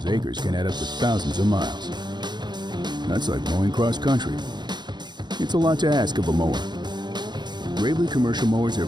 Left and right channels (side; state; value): left; late; 0.21 ms